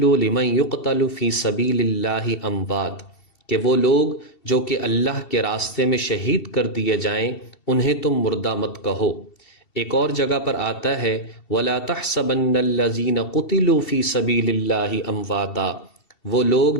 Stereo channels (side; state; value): right; late; 2.7 ms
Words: لمن یقتل فی سبیل اللہ اموات، کہ وہ لوگ جو کہ اللہ کے راستے میں شہید کر دیے جائیں انہیں تم مردہ مت کہو۔ ایک اور جگہ پر آتا ہے ولا تحسبن الذین قتلوا فی سبیل اللہ امواتا، وہ لوگ